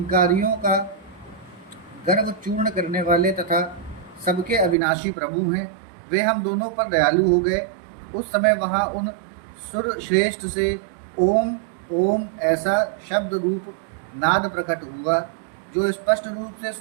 का गर्व चूर्ण करने वाले तथा सबके अविनाशी प्रभु हैं। वे हम दोनों पर दयालु हो गए। उस समय वहाँ उन सुर श्रेष्ठ से ओम ओम ऐसा शब्द रूप नाद प्रकट हुआ जो स्पष्ट रूप से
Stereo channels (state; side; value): drops out; left; at 4.8 s